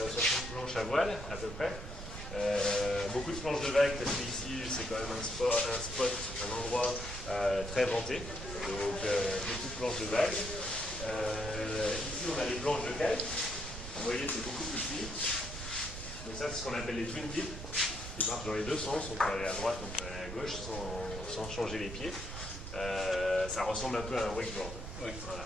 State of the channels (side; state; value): right; noise; rumble, 8 dB below the sound